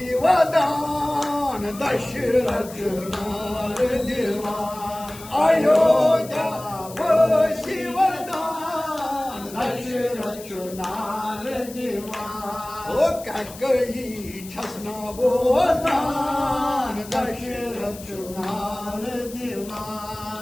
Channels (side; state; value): left; noise; hiss, 16 dB below the sound